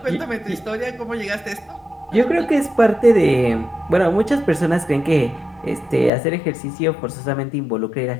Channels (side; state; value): right; drops out; at 6.1 s